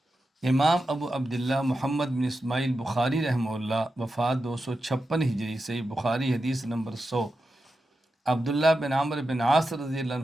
امام ابو عبداللہ محمد بن اسماعیل بخاری رحمہ اللہ وفات 256 ہجری صحیح بخاری حدیث نمبر 100، عبداللہ بن عمرو بن عاص رضی اللہ عنہ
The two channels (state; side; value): normal; both; correlation 0.90